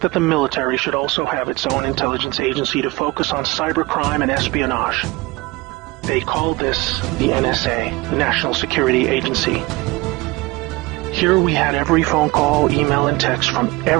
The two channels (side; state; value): left; quieter; 22.1 dB